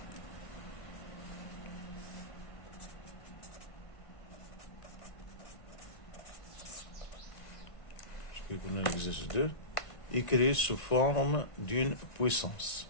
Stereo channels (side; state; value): right; late; 1.9 ms